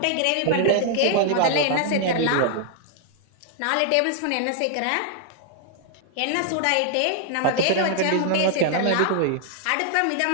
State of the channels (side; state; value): both; different; correlation -0.01